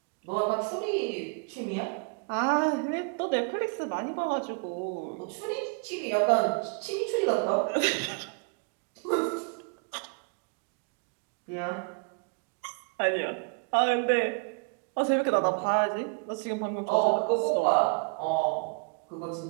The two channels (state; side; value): quieter; left; 35.2 dB